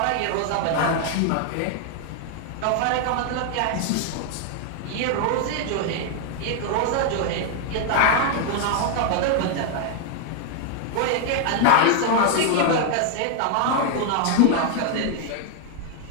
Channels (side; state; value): both; different; correlation 0.00